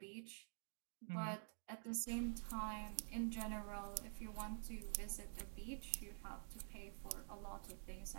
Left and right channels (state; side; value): silent; left; digital silence